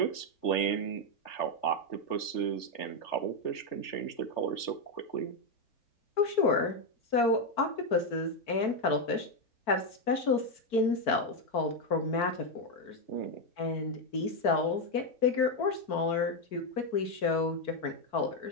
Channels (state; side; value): late; right; 4.5 ms